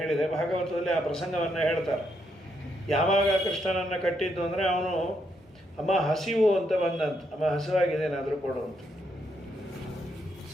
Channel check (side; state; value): both; normal; correlation 0.77